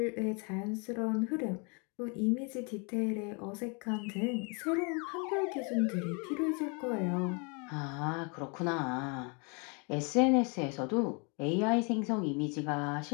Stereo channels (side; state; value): right; quieter; 33.9 dB